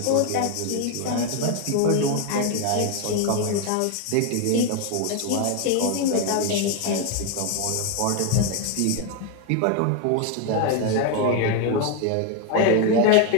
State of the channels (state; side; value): different; both; correlation 0.01